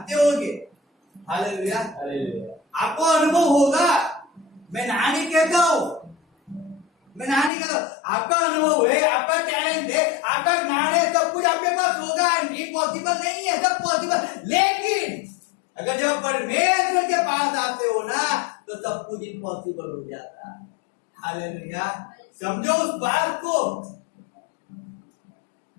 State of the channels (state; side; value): drops out; right; at 7.5 s